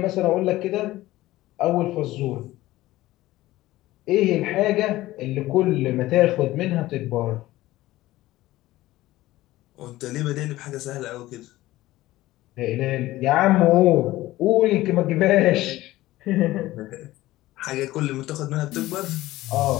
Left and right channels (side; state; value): right; quieter; 16.9 dB